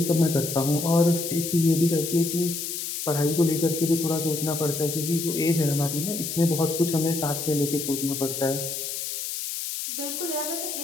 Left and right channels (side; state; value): left; noise; hiss, 5 dB below the sound